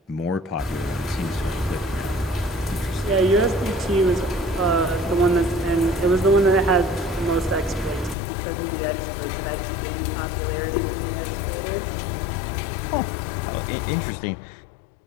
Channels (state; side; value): drops out; right; at 8.2 s